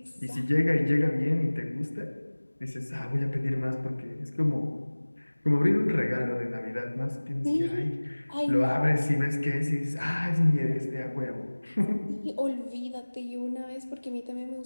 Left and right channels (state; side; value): inverted; both; correlation -1.00